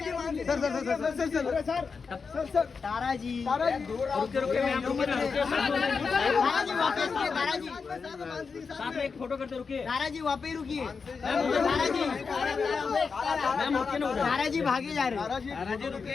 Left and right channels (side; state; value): right; quieter; 5.2 dB